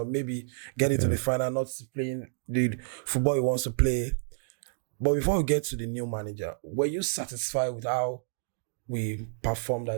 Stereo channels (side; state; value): left; silent; digital silence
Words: maybe get into the final, not playing the football he wants to play. But before we get to the new manager, were you satisfied with how we performed